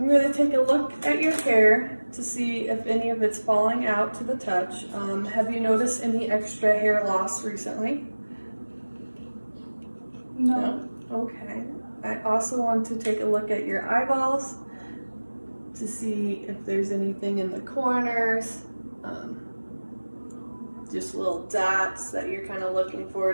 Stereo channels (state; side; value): inverted; both; correlation -1.00